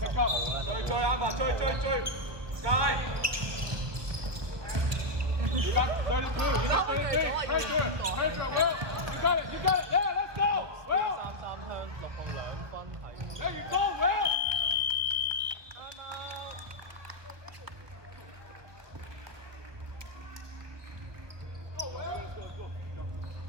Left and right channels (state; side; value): late; left; 1.4 ms